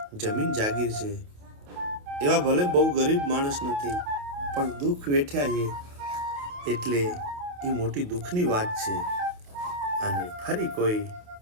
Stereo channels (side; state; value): left; late; 28 ms